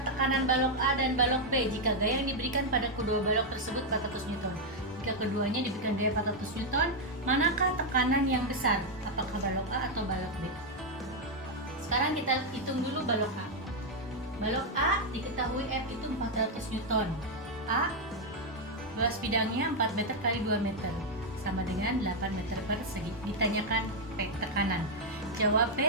tekanan balok A dan balok B jika gaya yang diberikan pada kedua balok tersebut 400 Newton. Jika keduanya diberikan gaya 400 Newton, manakah tekanan yang besar? Apakah balok A atau balok B? Sekarang kita hitung dulu balok A. Balok A diketahui F itu 400 Newton. A luas bidangnya 4 meter kali 2 meter sama dengan 8 meter persegi. Ditanyakan P tekanan. Jawab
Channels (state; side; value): normal; both; correlation 0.00